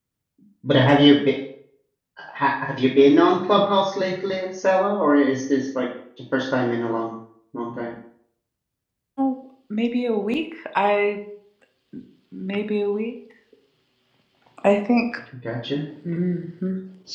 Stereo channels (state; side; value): identical; both; correlation 1.00